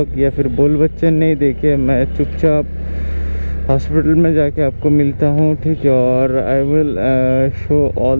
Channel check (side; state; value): both; inverted; correlation -1.00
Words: या फिर बोल बच्चे नहीं देखे, मैं चुपचाप हॉस्पिटल में जाके आपको मिलता हूँ, ठीक है। और I will show